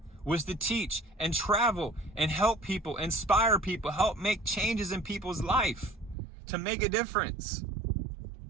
was to teach and travel and help people, inspire people, help make changes in people's life, to make a difference.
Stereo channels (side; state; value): left; drops out; at 6.2 s